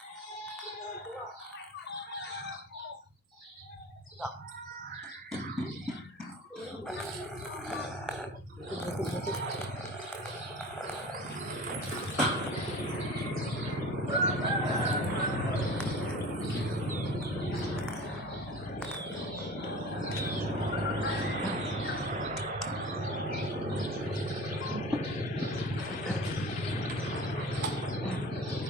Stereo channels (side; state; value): both; normal; correlation 0.38